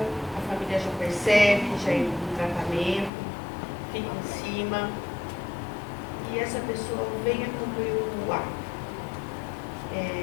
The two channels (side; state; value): right; drops out; at 3.1 s